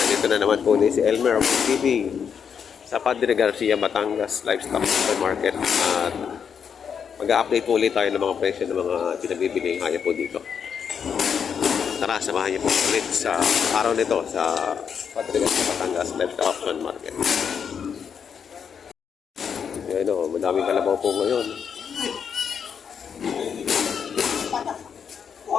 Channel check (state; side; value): quieter; right; 7.1 dB